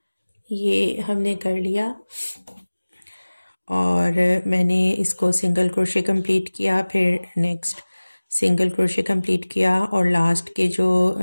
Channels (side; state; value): both; inverted; correlation -1.00